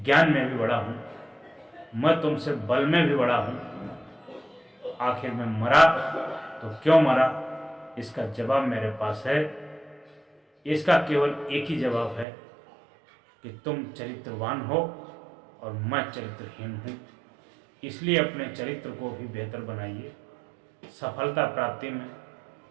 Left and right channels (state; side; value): drops out; left; at 12.2 s